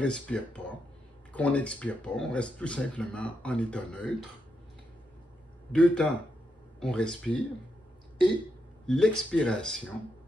pas, qu'on n'expire pas, on reste tout simplement en état neutre. 2 temps, on respire, et l'expiration,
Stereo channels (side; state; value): both; normal; correlation 0.83